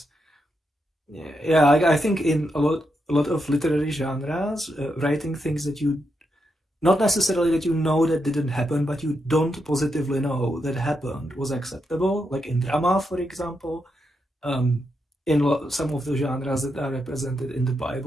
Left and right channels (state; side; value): normal; both; correlation 0.83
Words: Yeah. I think in a lot of literary genres, writing things that you not necessarily that you know that didn't happen, but you don't positively know that happened was acceptable. Like in drama, for example, in some of the genres that are represented in the